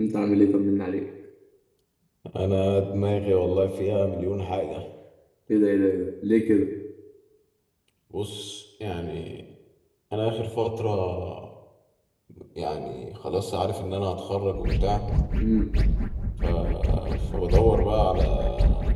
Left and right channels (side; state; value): both; identical; correlation 1.00